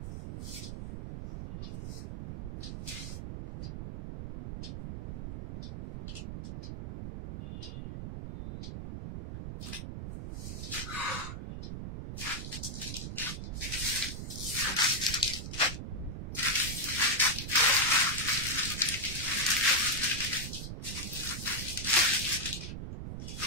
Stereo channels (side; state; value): right; noise; rumble, 7 dB below the sound